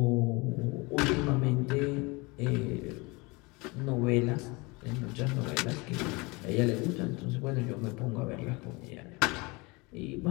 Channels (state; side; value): quieter; right; 26.1 dB